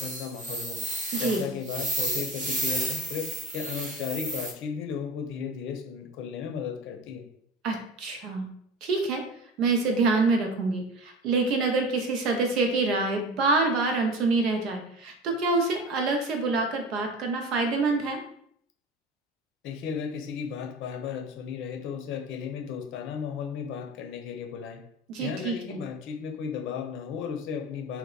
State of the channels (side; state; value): both; normal; correlation 0.31